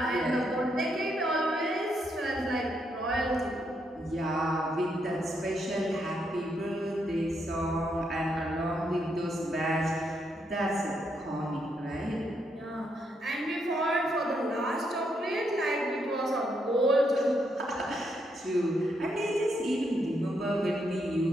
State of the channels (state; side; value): normal; both; correlation 0.78